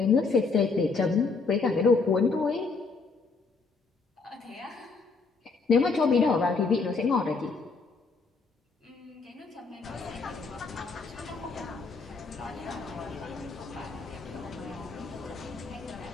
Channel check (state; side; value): quieter; right; 4.4 dB